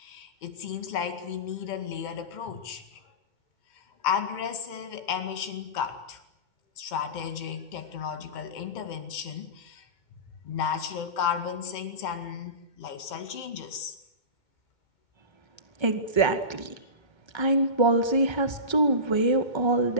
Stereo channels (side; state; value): right; late; 2.2 ms